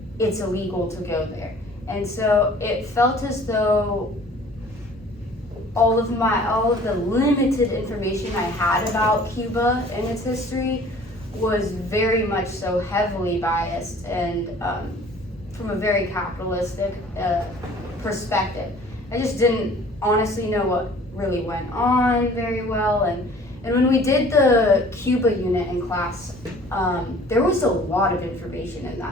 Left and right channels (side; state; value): both; normal; correlation 0.50